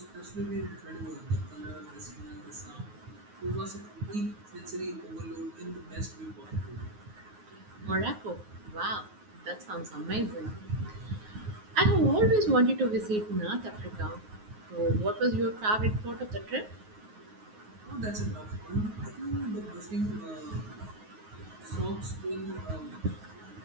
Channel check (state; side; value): late; left; 9.4 ms